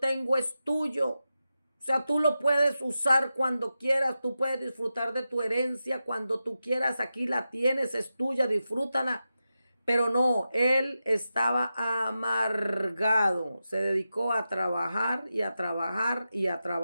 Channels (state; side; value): inverted; both; correlation -0.91